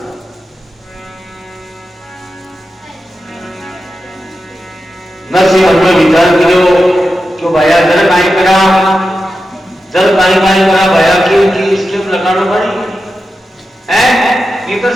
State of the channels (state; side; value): normal; both; correlation 0.90